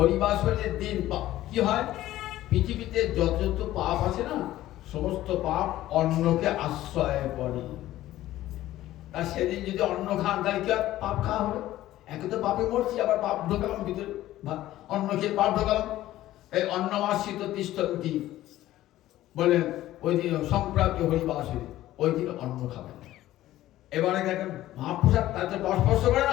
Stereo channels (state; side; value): quieter; right; 14.7 dB